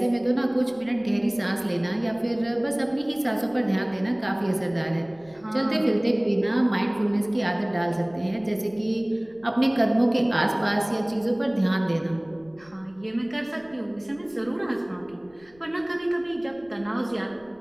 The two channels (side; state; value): left; noise; rumble, 29 dB below the sound